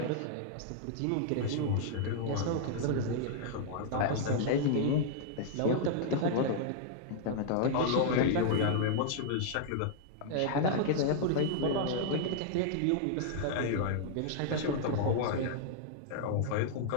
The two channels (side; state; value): both; different; correlation -0.01